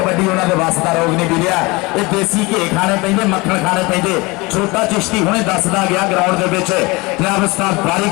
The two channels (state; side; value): quieter; right; 24.4 dB